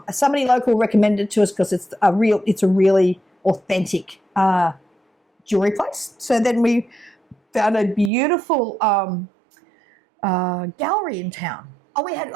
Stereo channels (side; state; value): left; drops out; at 8.1 s